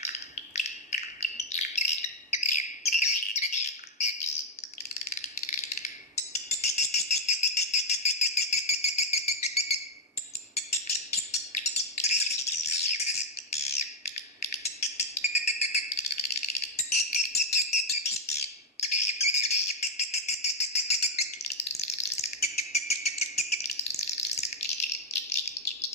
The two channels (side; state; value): both; normal; correlation 0.00